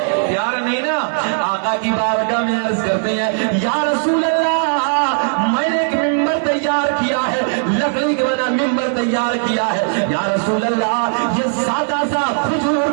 پیار نہیں نا. آقا کی بارگاہ میں عرض کرتے ہیں یا رسول اللہ میں نے ایک ممبر تیار کیا ہے لکڑی کے بنا ممبر تیار کیا ہے یا رسول اللہ یہ سادہ سا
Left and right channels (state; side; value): silent; left; 63 dB below the other